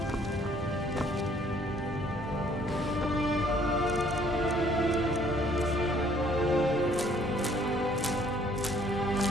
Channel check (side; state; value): both; normal; correlation 0.61